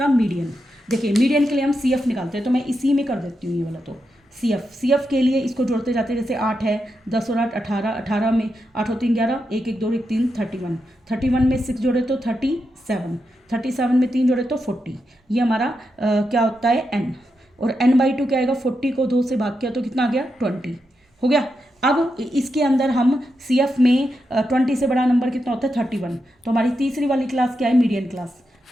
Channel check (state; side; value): normal; both; correlation 0.86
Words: मीडियन। देखिए मीडियन के लिए हम सी एफ निकालते हैं, तो मैं इसी में कर देती हूँ ये वाला। तो सी एफ के लिए इसको जोड़ते जाते हैं। जैसे 8 है, 10 और 8 18, 18 में 8 और 3 11, 1 1 2 1 3 31, 31 में 6 जोड़े तो 37, 37 में 3 जोड़े तो 40। ये हमारा क्या होता है? एन। और n/2 क्या आएगा? 40 को 2 से भाग किया तो कितना आ गया? 20 हो गया। अब इसके अंदर हम सी एफ में 20 से बड़ा नंबर कितना होता है? 31। तो हमारी तीसरी वाली क्लास क्या है? Median class.